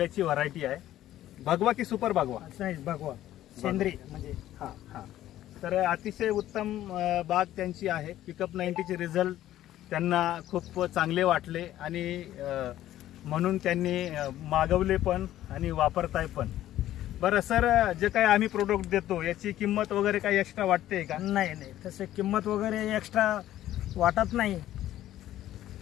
व्हरायटी आहे. भगवा की सुपर भगवा? नाही, भगवा सेंद्रिय म्हणजे. तर अतिशय उत्तम बाग त्यांची आहे. पिकअप 90चे रिझल्ट त्यांना खूप चांगले वाटले आणि म्हणून त्यांनी मागवले पण आणि वापरताय पण. बरं सर, जे काही आम्ही प्रोडक्ट देतो याची किंमत वगैरे काही एक्स्ट्रा वाटते का? नाही, तसे किंमत वगैरे एक्स्ट्रा वाटत नाही.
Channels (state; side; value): quieter; right; 13.3 dB